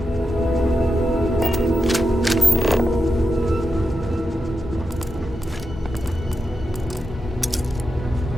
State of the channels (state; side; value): normal; both; correlation 0.88